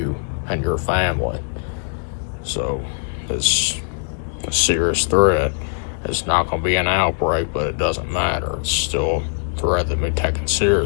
and your family. So it's a serious threat. It's not going to be an outbreak, but it doesn't matter. It's still a threat that be taken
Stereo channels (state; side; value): silent; right; digital silence